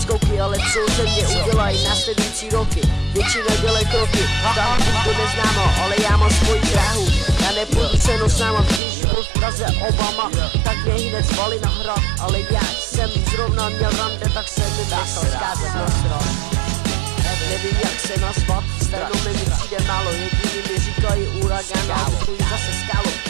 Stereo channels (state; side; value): drops out; left; at 8.8 s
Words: ale co ze mě udělají následující roky. Většina dělej kroky, tam to neznámo, ale já mám svoji dráhu. Já nepůjdu cenou sama, když byl v Praze Obama, tak mě hned zvali na hrad. Ale já jsem zrovna měl rande, tak jsem mi nechal zkázat na strach. Nevím jak se nazvat, stranou mi přijde málo. Jediný mi říkají uragán a vzdují zase skálu.